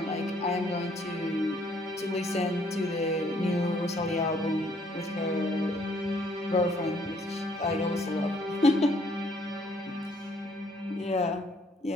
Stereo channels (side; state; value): both; normal; correlation 0.65